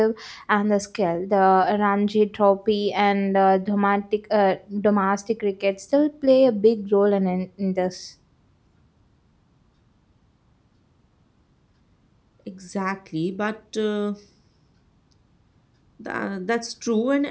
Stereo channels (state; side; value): identical; both; correlation 1.00